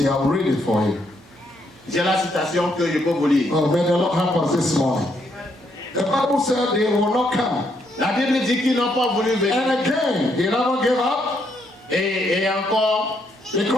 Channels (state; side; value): normal; both; correlation 0.75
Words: I'll read it for you. J'ai la citation que je peux vous lire. Oh, may the Lord help us this morning. The Bible said they will not come. La Bible dit qu'ils n'ont pas voulu venir. And again, they never gave up Et encore,